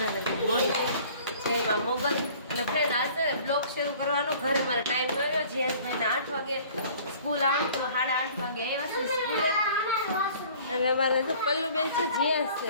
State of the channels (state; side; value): inverted; both; correlation -0.50